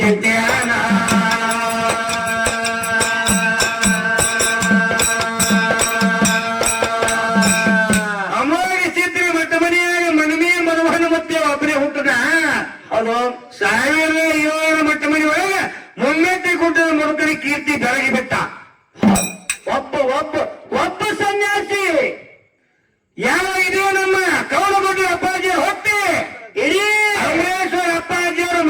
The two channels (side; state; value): both; identical; correlation 1.00